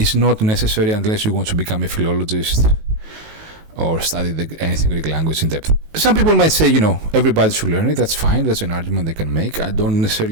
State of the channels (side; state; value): left; late; 19 ms